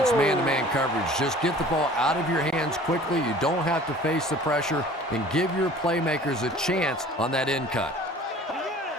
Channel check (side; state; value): both; normal; correlation 0.47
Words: man-to-man coverage. Just get the ball out of your hands quickly. You don't have to face the pressure, and give your playmakers a chance on that end cut.